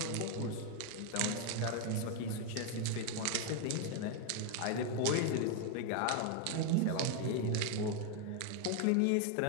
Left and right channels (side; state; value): both; different; correlation 0.01